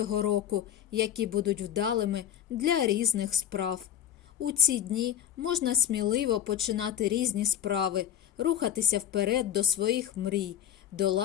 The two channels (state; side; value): quieter; right; 10.2 dB